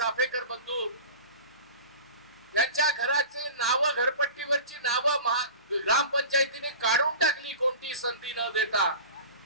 बंधू, यांच्या घराचे नाव, घरपट्टीवरची नावं ग्रामपंचायतीने काढून टाकली कोणती संधी न देता.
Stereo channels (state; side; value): inverted; both; correlation -0.36